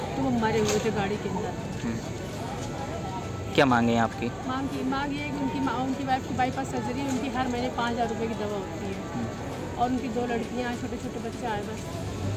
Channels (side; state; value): both; identical; correlation 1.00